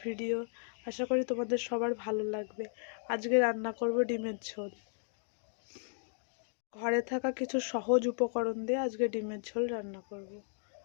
ভিডিও। আশা করি তোমাদের সবার ভালো লাগবে। আজকে রান্না করব ডিমের ঝোল। ঘরে থাকা কিছু সহজ উপকরণ দিয়ে আজকে ডিমের ঝোল রান্না করব।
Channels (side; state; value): right; silent; 54 dB below the other